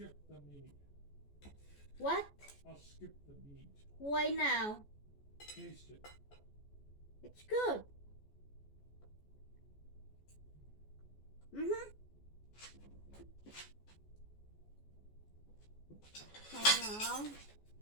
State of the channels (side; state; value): right; late; 14 ms